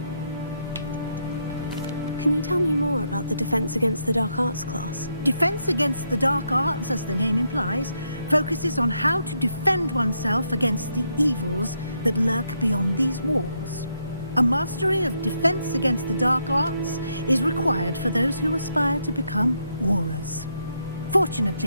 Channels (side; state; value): both; inverted; correlation -0.78